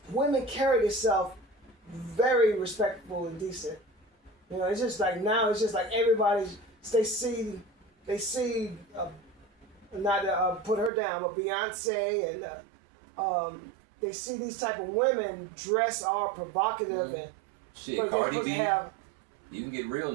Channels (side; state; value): left; drops out; at 10.9 s